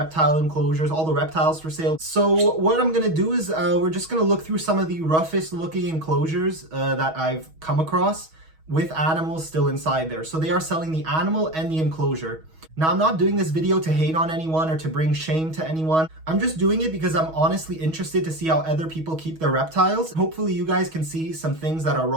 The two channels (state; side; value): late; left; 6.3 ms